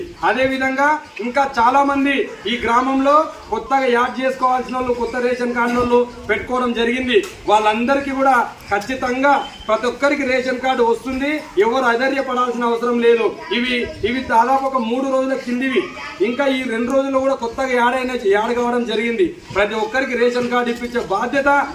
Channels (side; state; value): both; identical; correlation 1.00